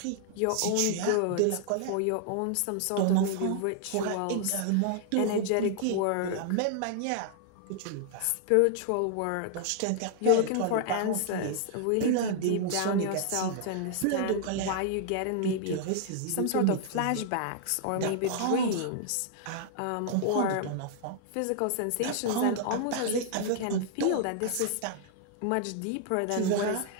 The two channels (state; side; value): different; both; correlation -0.01